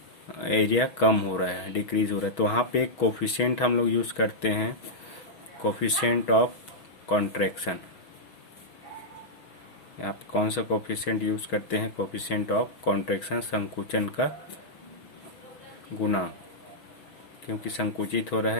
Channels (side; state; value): right; late; 6.3 ms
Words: एरिया कम हो रहा है, डिक्रीज हो रहा है। तो वहाँ पे एक कोफिशिएंट हम लोग यूज़ करते हैं, कोफिशिएंट ऑफ कॉन्ट्रैक्शन। यहाँ पे कौन सा कोफिशिएंट यूज़ करते हैं, कोफिशिएंट ऑफ कॉन्ट्रैक्शन, संकुचन का गुणांक, क्योंकि संकुचित हो रहा